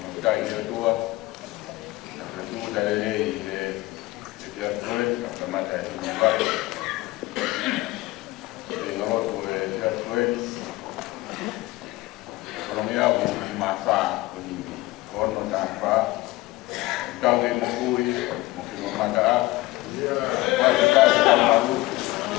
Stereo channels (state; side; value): quieter; right; 19.4 dB